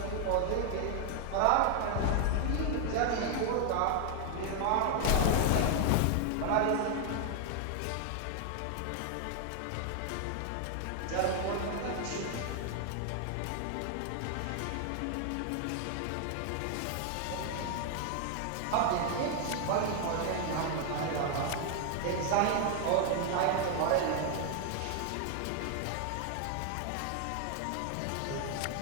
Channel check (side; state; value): both; different; correlation 0.00